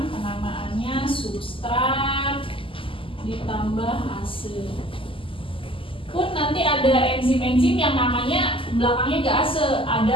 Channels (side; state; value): right; late; 0.25 ms